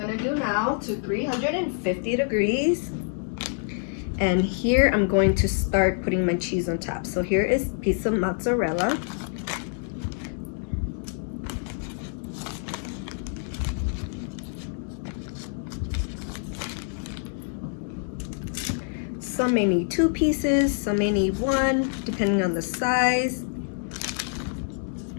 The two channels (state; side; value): silent; right; 61 dB below the other